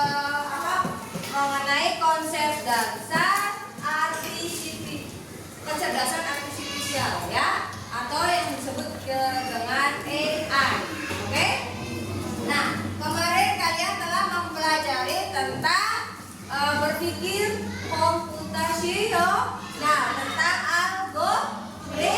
mengenai konsep dasar kecerdasan artifisial ya, atau yang disebut dengan AI. Oke? Nah, kemarin kalian telah mempelajari tentang berpikir komputasional. Nah, tentang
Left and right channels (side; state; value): both; identical; correlation 1.00